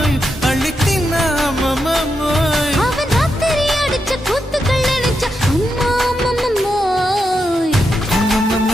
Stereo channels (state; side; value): normal; both; correlation 0.85